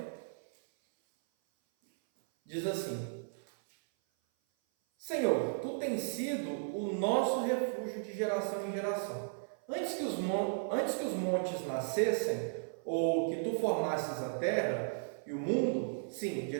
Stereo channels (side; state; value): left; silent; 54 dB below the other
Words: Diz assim: Senhor, tu tens sido o nosso refúgio de geração em geração. Antes que os montes nascessem, ou que tu formasses a terra e o mundo, sim, de